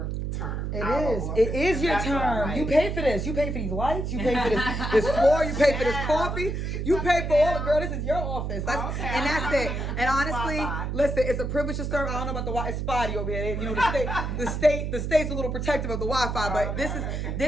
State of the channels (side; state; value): right; noise; hum, 3 dB below the sound